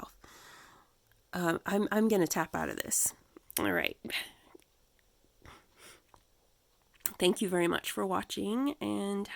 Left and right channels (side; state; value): both; identical; correlation 1.00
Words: I'm going to tap out of this. All right. Thank you very much for watching, and